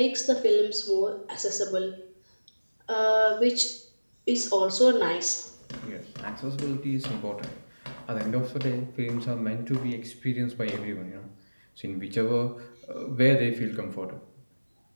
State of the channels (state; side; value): inverted; both; correlation -1.00